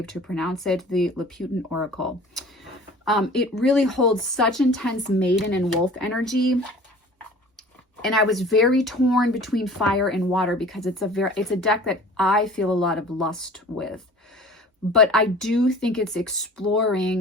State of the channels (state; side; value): normal; both; correlation 0.44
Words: to pronounce it, the Lautin Oracle. It really holds such intense maiden and wolf energy. And I was very torn between fire and water because it's a deck that I feel a lot of lust with. But I do think it's